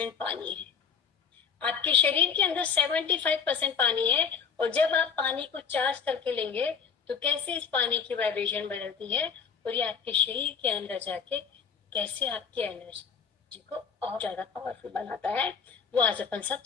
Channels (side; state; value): right; quieter; 6.4 dB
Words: पानी है, आपके शरीर के अंदर 75% पानी है, और जब आप पानी को चार्ज करके लेंगे तो कैसे इस पानी की वाइब्रेशन बदलती है और ये आपके शरीर के अंदर जाके कैसे आपकी एनर्जी को और ज्यादा पावरफुल बनाता है, वो आज अपन सब